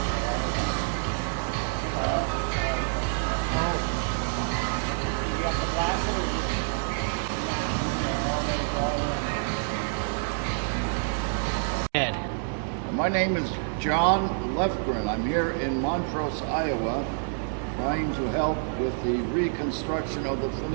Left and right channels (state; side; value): silent; left; 60 dB below the other